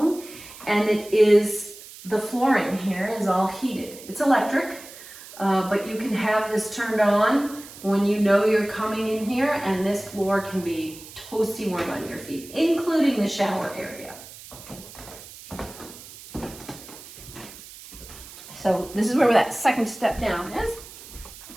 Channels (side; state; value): right; noise; hiss, 17 dB below the sound